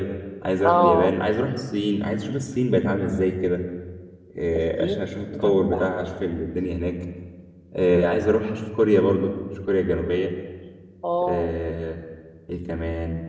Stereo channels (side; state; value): both; identical; correlation 1.00